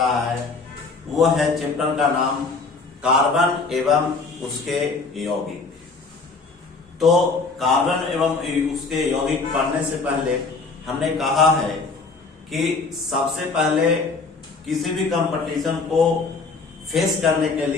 है। वो है चैप्टर का नाम कार्बन एवं उसके यौगिक। तो कार्बन एवं उसके यौगिक पढ़ने से पहले हमने कहा है कि सबसे पहले किसी भी कंपटीशन को फेस करने के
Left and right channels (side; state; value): right; quieter; 4.2 dB